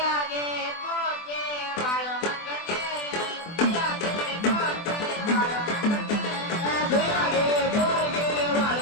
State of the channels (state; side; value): late; right; 24 ms